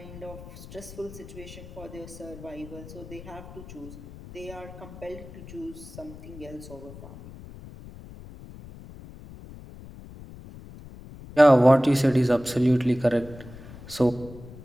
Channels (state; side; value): noise; left; rumble, 16 dB below the sound